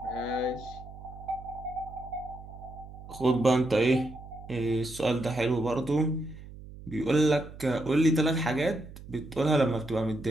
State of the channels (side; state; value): right; noise; hum, 15 dB below the sound